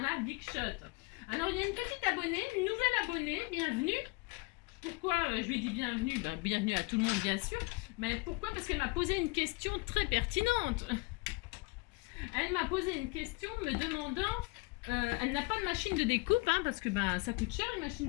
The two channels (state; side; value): quieter; right; 26.2 dB